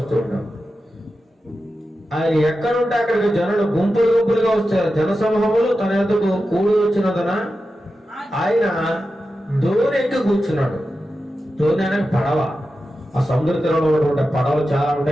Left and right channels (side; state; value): both; normal; correlation 0.91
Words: ఉంటారు. ఆయన ఎక్కడుంటే అక్కడికి జనులు గుంపులు గుంపులుగా వస్తారు. జన సమూహములు తన యొద్దకు కూడి వచ్చినందున ఆయన దోణి ఎక్కి కూర్చున్నాడు. దోణి అనేది పడవ. ఆ సముద్ర తీరంలో ఉన్నటువంటి పడవలు చాలా